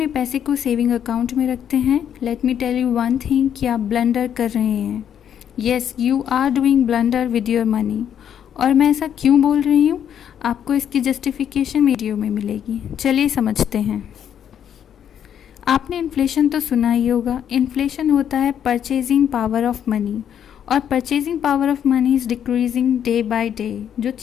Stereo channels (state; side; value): quieter; right; 9.1 dB